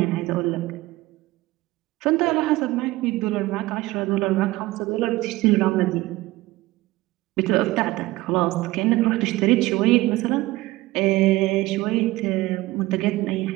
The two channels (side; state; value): left; quieter; 18.7 dB